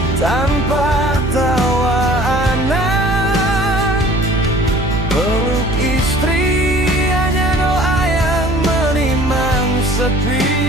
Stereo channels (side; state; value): right; noise; hum, 5 dB below the sound